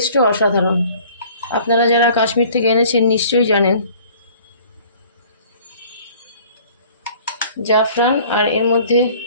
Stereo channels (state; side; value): inverted; both; correlation -0.51